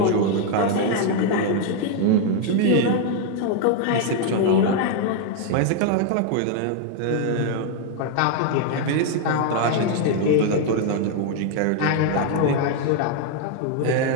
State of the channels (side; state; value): both; different; correlation 0.00